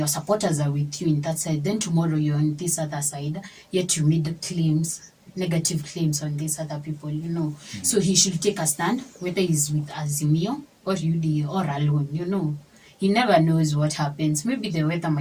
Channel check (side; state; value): both; identical; correlation 1.00